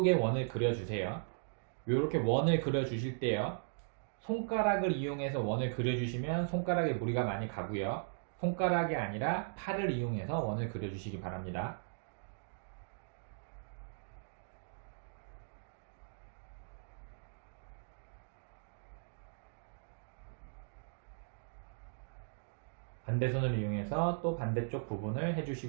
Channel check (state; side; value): silent; left; digital silence